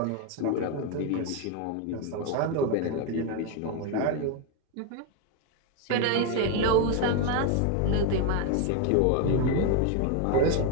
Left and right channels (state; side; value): different; both; correlation 0.02